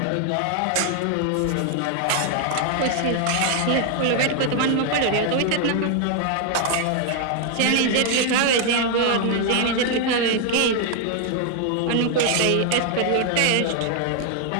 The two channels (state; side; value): different; both; correlation 0.00